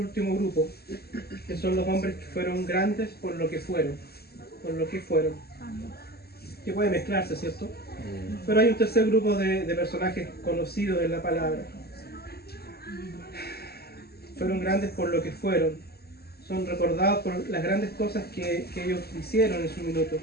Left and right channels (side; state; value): right; late; 0.46 ms